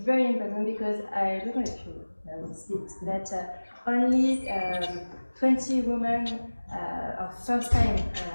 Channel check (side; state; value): both; inverted; correlation -1.00